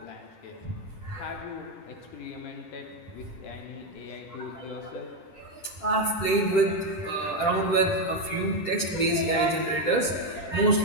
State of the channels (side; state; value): right; late; 10 ms